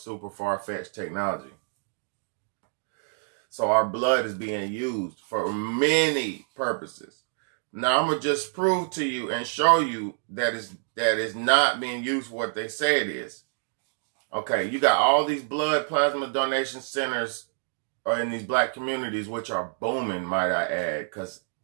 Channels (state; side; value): silent; left; digital silence